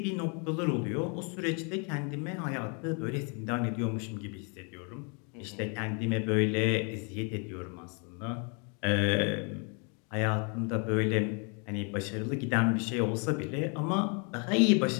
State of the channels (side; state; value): right; quieter; 36.5 dB